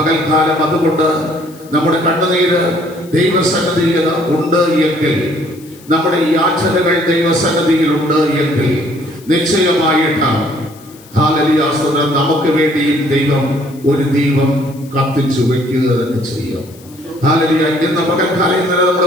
അതുകൊണ്ട് നമ്മുടെ കണ്ണുനീര് ദൈവസന്നിധിയിൽ ഉണ്ട് എങ്കിൽ, നമ്മുടെ യാചനകൾ ദൈവസന്നിധിയിലുണ്ട് എങ്കിൽ നിശ്ചയമായിട്ടാണ് ഹല്ലേലൂയ സ്തോത്രം നമുക്ക് വേണ്ടിയും ദൈവം ഒരു ദീപം കത്തിച്ചു വെക്കുക തന്നെ ചെയ്യും. ഹല്ലേലൂയ. ഇന്ന് പകൽക്കാലം ഇന്നലെ നമ്മൾ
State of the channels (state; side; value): noise; left; hiss, 24 dB below the sound